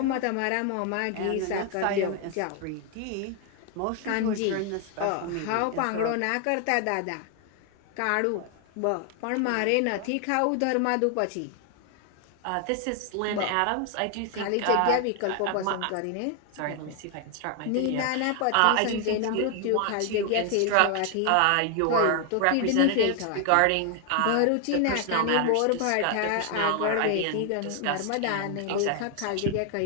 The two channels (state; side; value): different; both; correlation 0.00